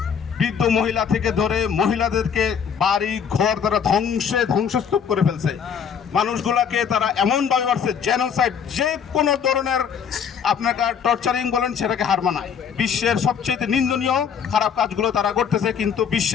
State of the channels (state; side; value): quieter; right; 7.3 dB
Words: বৃদ্ধ মহিলা থেকে ধরে মহিলাদেরকে বাড়ি ঘর তারা ধ্বংসস্তূপ করে ফেলছে। মানুষগুলাকে তারা এমনভাবে মারছে, জেনোসাইড, যে কোনো ধরনের আপনাকে টর্চারিং বলেন সেটাকে হার মানায়। বিশ্বের সবচেয়ে নিন্দনীয় খারাপ কাজগুলো তারা করতেছে, কিন্তু